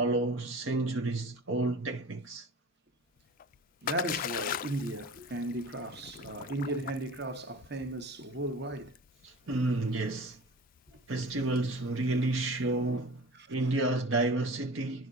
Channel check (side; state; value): both; normal; correlation 0.38